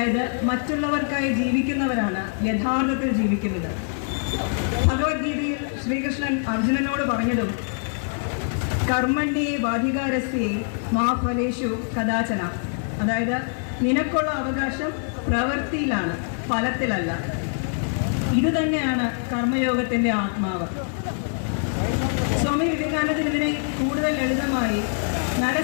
മറ്റുള്ളവർക്കായി ജീവിക്കുന്നവരാണ് യഥാർത്ഥത്തിൽ ജീവിക്കുന്നത്. ഭഗവത്ഗീതയിൽ ശ്രീകൃഷ്ണൻ അർജുനനോട് പറഞ്ഞതും കർമ്മണ്യേ വാധികാരസ്യേ മാ ഫലേഷു കദാചന, അതായത് നിനക്കുള്ള അവകാശം പ്രവൃത്തിയിലാണ്, ഫലത്തിലല്ല. ഇത് തന്നെയാണ് കർമ്മയോഗത്തിന്റെ ആത്മാവ്. സ്വാമി വിവേകാനന്ദൻ ഇതിനെ കൂടുതൽ ലളിതമായി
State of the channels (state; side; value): silent; right; 62 dB below the other